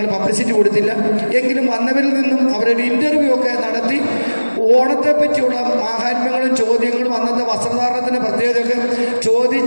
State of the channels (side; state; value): both; inverted; correlation -1.00